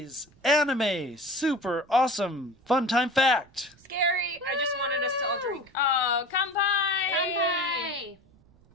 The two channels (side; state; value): right; noise; rumble, 29 dB below the sound